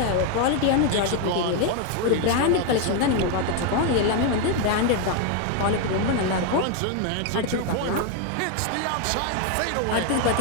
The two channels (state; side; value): different; both; correlation 0.01